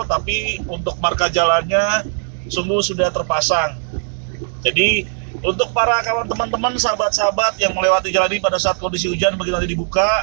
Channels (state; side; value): silent; left; 61 dB below the other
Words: tapi untuk marka jalannya sungguh sudah terpasang. Jadi untuk para kawan teman-teman, sahabat-sahabat yang melewati jalan ini pada saat kondisi hujan begitu nanti